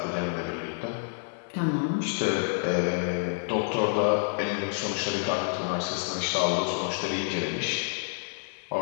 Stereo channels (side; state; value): right; silent; digital silence